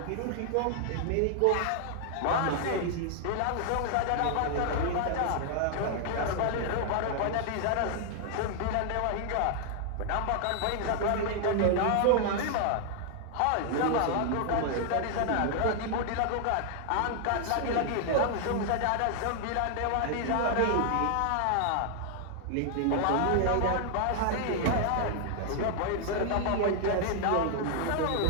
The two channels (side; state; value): both; different; correlation 0.00